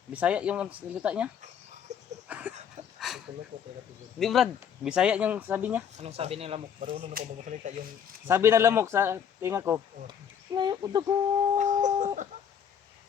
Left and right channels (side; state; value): right; quieter; 8.1 dB